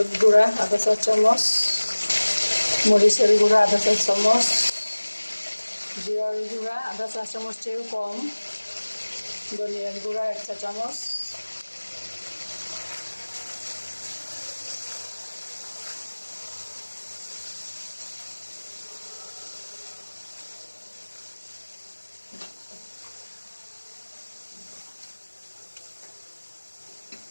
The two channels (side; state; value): both; inverted; correlation -1.00